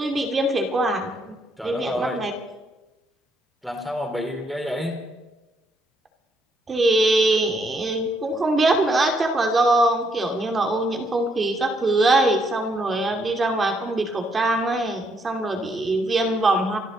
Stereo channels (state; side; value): normal; both; correlation 0.73